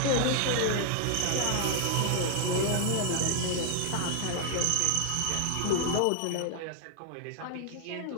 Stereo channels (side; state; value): both; different; correlation 0.00